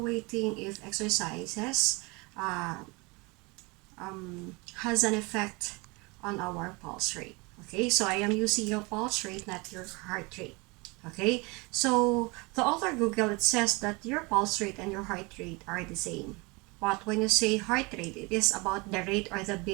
if exercises uh, has an effect on our pulse rate. Okay, so I am using your pulse rate, not your heart rate. Okay, so the author Google, it says that your pulse rate and your heart rate are the same. But when you say heart rate, it is about the rate or the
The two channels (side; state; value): left; quieter; 26.8 dB